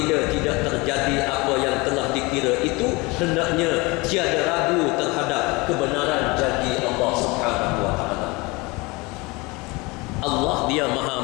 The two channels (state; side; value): quieter; right; 25.0 dB